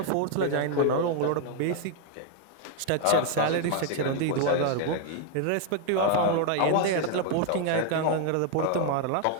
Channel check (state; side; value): different; both; correlation 0.00